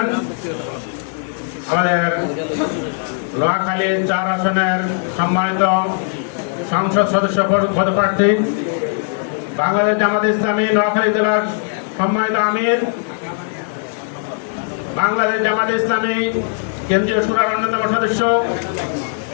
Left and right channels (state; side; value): silent; right; 56 dB below the other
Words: আমাদের নোয়াখালী ৪ আসনের সম্মানিত সংসদ সদস্য পদপ্রার্থী, বাংলাদেশ জামাত ইসলামী নোয়াখালী জেলার সম্মানিত আমির, বাংলাদেশ জামাত ইসলামী কেন্দ্রীয় শুরার অন্যতম সদস্য,